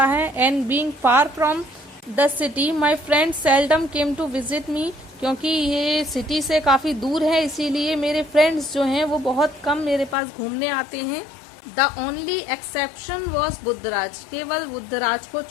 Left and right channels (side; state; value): right; drops out; at 10.2 s